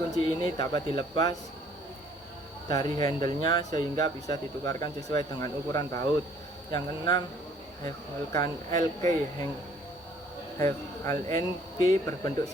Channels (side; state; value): both; normal; correlation 0.59